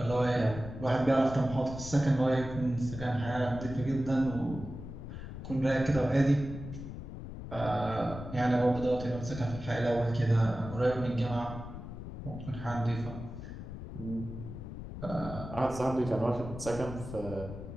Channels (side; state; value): left; noise; rumble, 10 dB below the sound